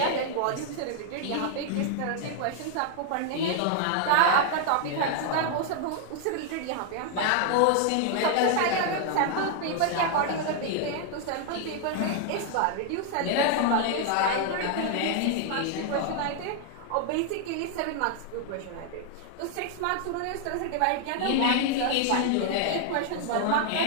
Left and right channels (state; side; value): different; both; correlation 0.00